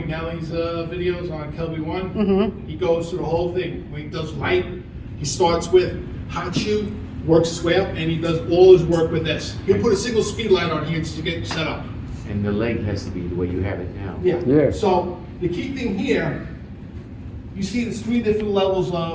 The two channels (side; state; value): both; identical; correlation 1.00